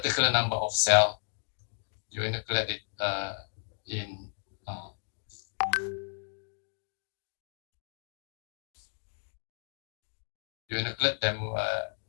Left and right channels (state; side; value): silent; right; digital silence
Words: number of cell, you inoculate it you inoculate them